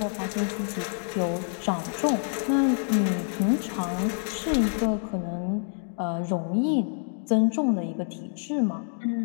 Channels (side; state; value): right; silent; 60 dB below the other